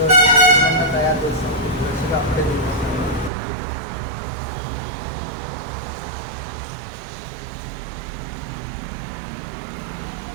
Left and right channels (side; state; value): left; drops out; at 3.3 s